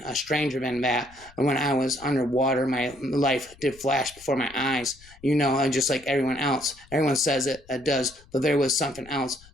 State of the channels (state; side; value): noise; left; rumble, 25 dB below the sound